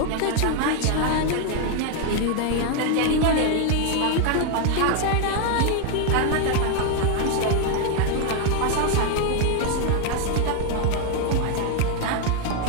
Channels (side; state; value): both; different; correlation 0.01